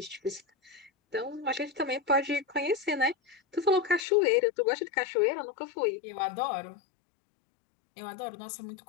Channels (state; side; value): drops out; right; at 4.0 s